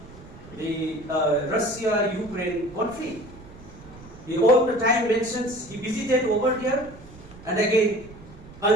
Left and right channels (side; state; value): right; noise; rumble, 19 dB below the sound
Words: the Russia-Ukraine conflict. He all the time mentions he visited over here and again